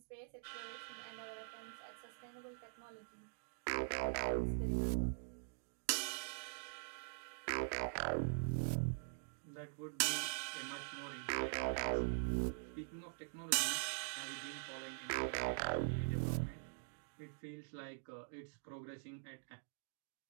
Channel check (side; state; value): left; silent; digital silence